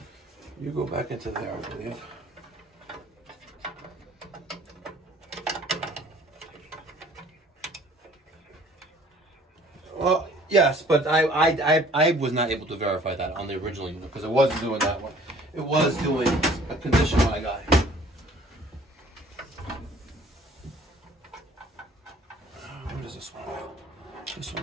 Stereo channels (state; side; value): normal; both; correlation 0.54